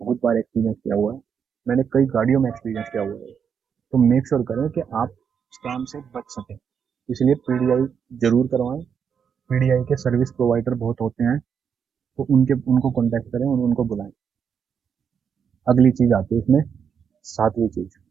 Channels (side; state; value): left; quieter; 7.2 dB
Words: बार एक्सपीरियंस किया हुआ है, मैंने कई गाड़ियों में एक्सपीरियंस किया हुआ है। तो मेक श्योर करें कि आप स्कैम से बच सकें, इसलिए पीडीआई जरूर करवाएं। पीडीआई के सर्विस प्रोवाइडर बहुत होते हैं, तो उनको कॉन्टैक्ट करें और उनको बुलाएं। अगली चीज आती है इसमें, सातवीं चीज,